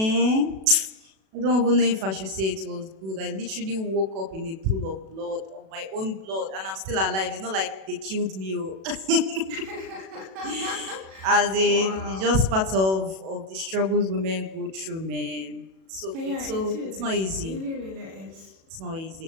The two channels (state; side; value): late; left; 37 ms